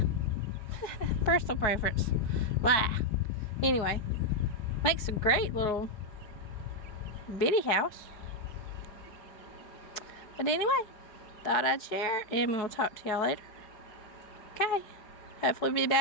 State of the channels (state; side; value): late; right; 4.7 ms